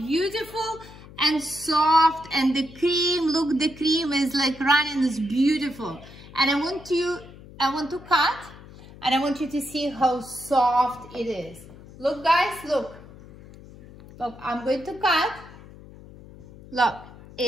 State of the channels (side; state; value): left; noise; hum, 19 dB below the sound